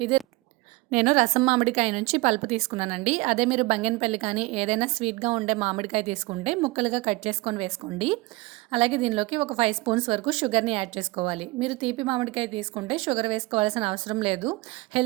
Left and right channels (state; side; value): quieter; left; 23.0 dB